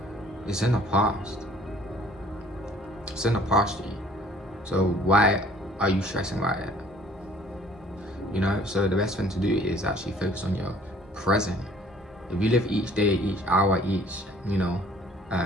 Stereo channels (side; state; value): both; normal; correlation 0.56